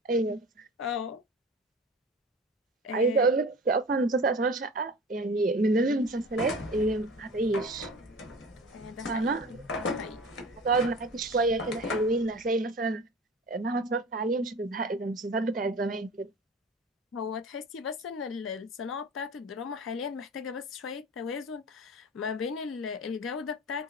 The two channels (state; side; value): normal; both; correlation 0.38